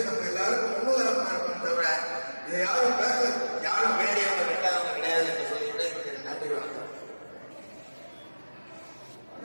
நம்ம எல்லாருக்கும் முன்னுதாரணமா இருக்கணும். தவிர இதை யாரும் வேலையாக வேண்டாதவங்க கிடையாது என்று சொல்லிவிட்டு நன்றி, வணக்கம்.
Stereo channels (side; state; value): both; inverted; correlation -1.00